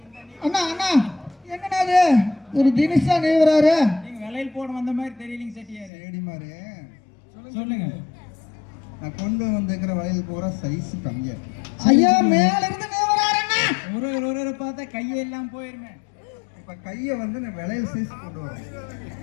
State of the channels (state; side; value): drops out; right; at 5.9 s